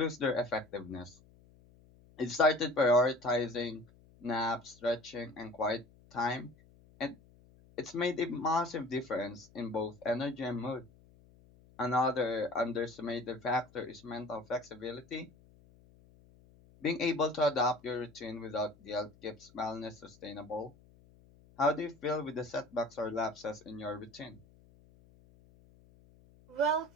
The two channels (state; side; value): noise; left; hum, 26 dB below the sound